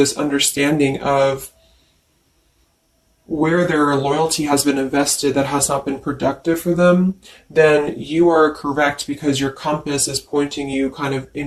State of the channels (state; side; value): identical; both; correlation 1.00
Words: understanding of where their loyalty has been invested that has not been productive for them, then you are correct, because your compass is pointing you kind of